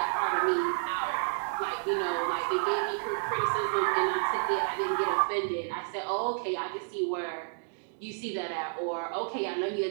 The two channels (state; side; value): silent; left; digital silence